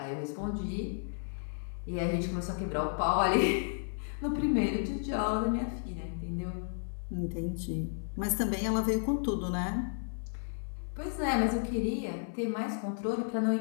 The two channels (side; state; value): right; silent; 56 dB below the other